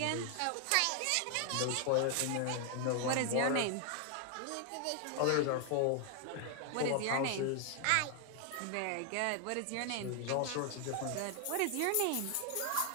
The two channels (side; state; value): both; different; correlation 0.00